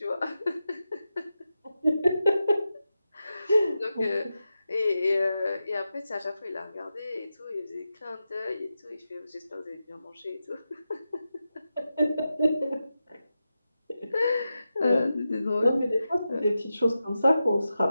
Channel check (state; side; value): inverted; both; correlation -0.90